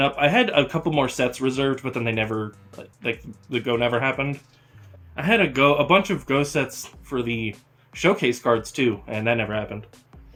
Up. I had a couple more sets reserved, but then they never, like, the go never happened. I had a bunch of go sets for the showcase cards too, and that never happened.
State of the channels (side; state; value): both; identical; correlation 1.00